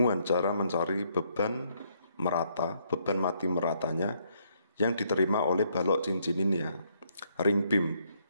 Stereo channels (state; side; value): inverted; both; correlation -0.71